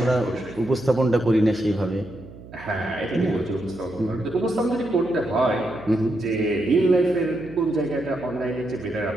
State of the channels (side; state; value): right; noise; hum, 17 dB below the sound